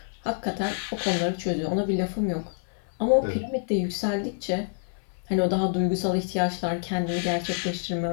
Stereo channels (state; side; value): silent; right; 60 dB below the other